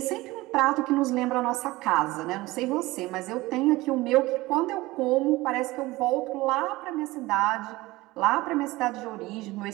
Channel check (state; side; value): quieter; left; 19.8 dB